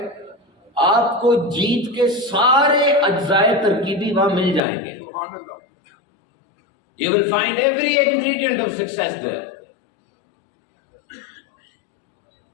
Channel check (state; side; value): drops out; right; at 4.6 s